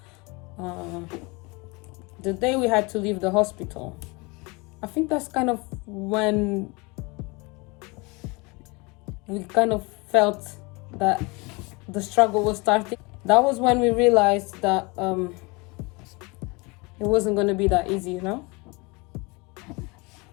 The day we had to leave the hospital, I think that's kind of when we kind of felt that the struggle was starting. That was when we realized that it wasn't going to be that easy, you know?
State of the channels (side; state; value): right; quieter; 27.1 dB